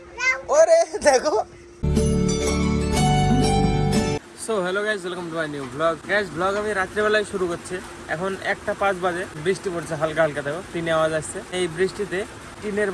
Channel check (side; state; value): both; identical; correlation 1.00